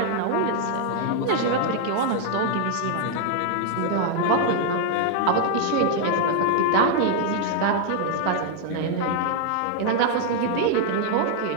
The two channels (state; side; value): different; both; correlation 0.00